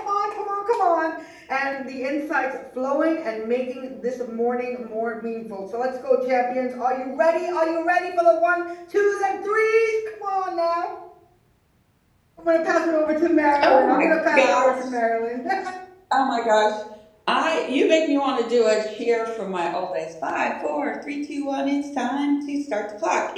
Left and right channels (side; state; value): both; identical; correlation 1.00